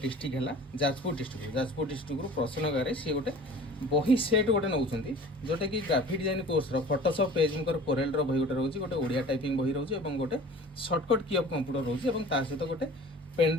है जाजपुर डिस्ट्रिक्ट प्रसन्न गागराई सी गोटे बही सेट गोटे नौ जोटा कि graphic design course Photoshop PageMaker Corel बही गोटे रोचे गोटे ओडिया टाइपिंग बही रोचे गोटे सर्टकट की ऑफ कंप्यूटर रोचे सहित गोटे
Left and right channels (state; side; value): normal; both; correlation 0.43